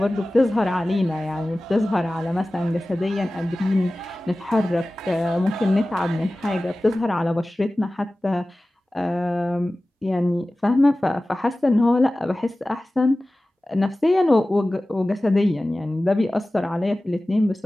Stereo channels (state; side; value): normal; both; correlation 0.97